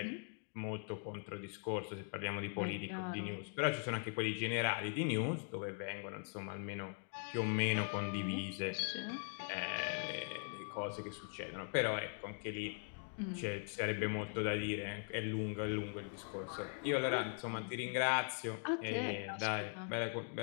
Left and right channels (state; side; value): silent; right; 50 dB below the other